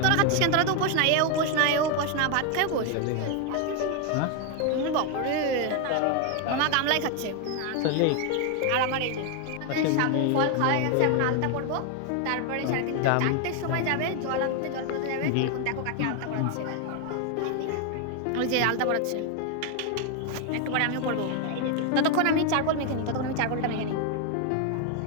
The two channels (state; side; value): different; both; correlation 0.01